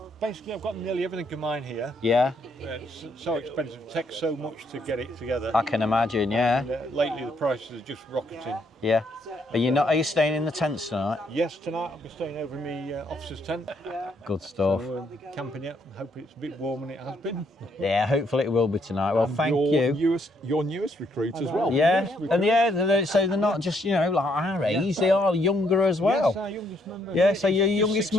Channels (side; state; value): both; normal; correlation 0.71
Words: Basically, I've got nearly everything of mine here. Yeah, It's so expensive, it takes so much to get it together. I can imagine, yeah. And, lately, the prices are just rocketing. Yeah. Are you staying in the tents tonight? Yes, tonight I'll be staying over in my officer's tent. Good stuff. So, camping it. I hope it's a bit warmer than it has been. Yeah, hopefully it will be tonight. Well, thank you. Your newest recruit as well. Yeah, and so they're not just, like our age, they are younger as well. Yes, our youngest member. Yeah, so you're Just youngest